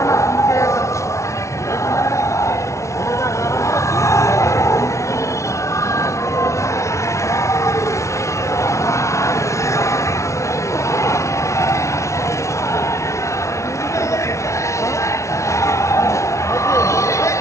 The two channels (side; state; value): right; late; 0.14 ms